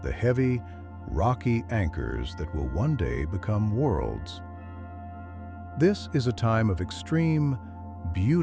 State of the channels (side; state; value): both; identical; correlation 1.00